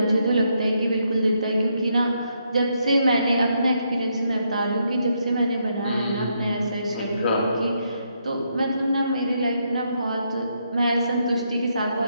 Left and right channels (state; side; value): inverted; both; correlation -0.77